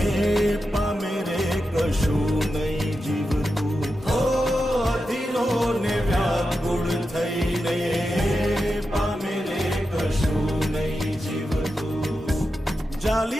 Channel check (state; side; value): normal; both; correlation 0.89